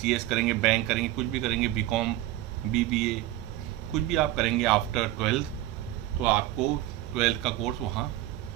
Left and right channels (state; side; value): quieter; left; 15.1 dB